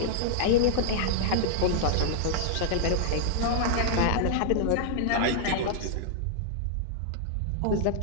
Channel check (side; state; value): both; different; correlation -0.01